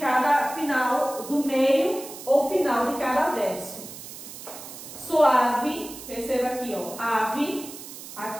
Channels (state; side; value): noise; right; hiss, 13 dB below the sound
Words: final, do meio ou final de cada verso. Suave, perceba aqui, ó, ave,